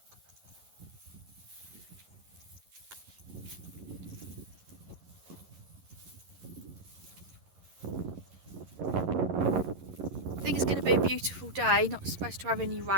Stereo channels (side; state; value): left; late; 11 ms